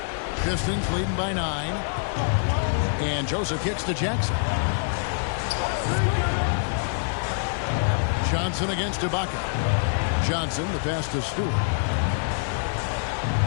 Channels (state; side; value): silent; right; digital silence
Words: Pistons leading by 9. And Joseph kicks to Jackson. Johnson against Ibaka. Johnson, the pass to Stewart.